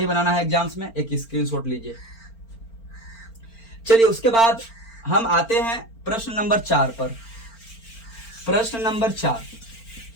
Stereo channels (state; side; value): late; right; 4.4 ms